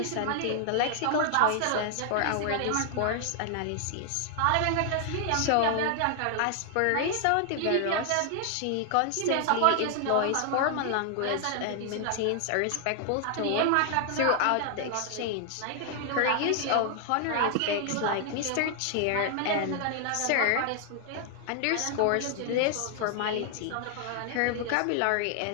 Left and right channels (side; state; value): both; different; correlation 0.00